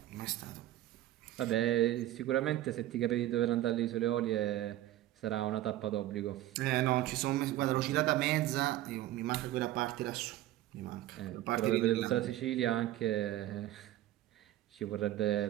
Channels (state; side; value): quieter; left; 14.6 dB